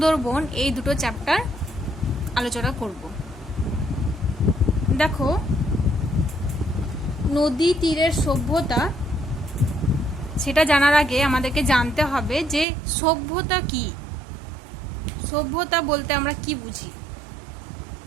এই দুটো চ্যাপ্টার আলোচনা করব। দেখো, নদী তীরের সভ্যতা সেটা জানার আগে আমাদেরকে জানতে হবে যে সভ্যতা কি। সভ্যতা বলতে আমরা কি বুঝি।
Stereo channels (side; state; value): left; drops out; at 12.7 s